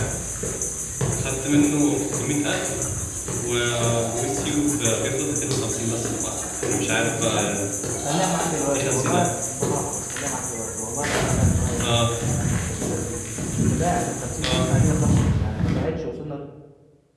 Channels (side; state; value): both; identical; correlation 1.00